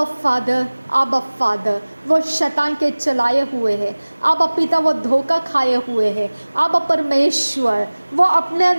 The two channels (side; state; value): both; inverted; correlation -1.00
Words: फादर वो शैतान के चलाए हुए हैं, अब पिता वो धोखा खाए हुए हैं, अब परमेश्वर वो अपने